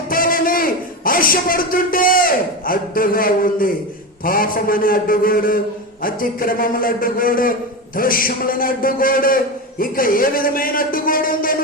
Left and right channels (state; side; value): normal; both; correlation 0.19